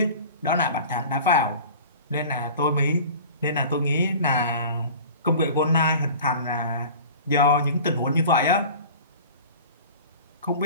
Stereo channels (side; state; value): both; inverted; correlation -0.40